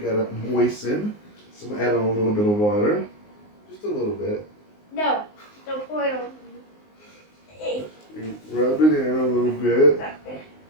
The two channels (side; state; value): right; late; 19 ms